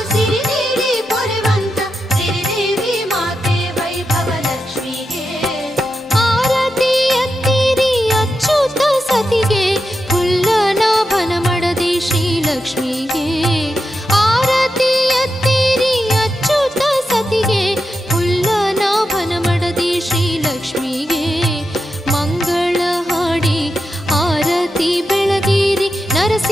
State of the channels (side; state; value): both; normal; correlation 0.88